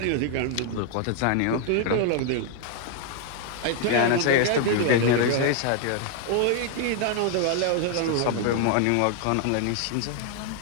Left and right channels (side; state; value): both; different; correlation 0.00